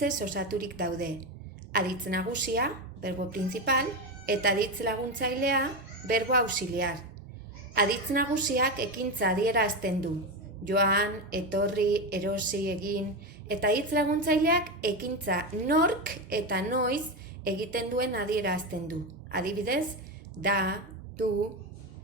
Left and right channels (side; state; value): both; normal; correlation 0.15